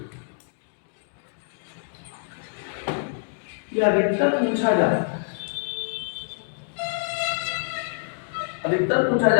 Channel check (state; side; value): silent; right; 61 dB below the other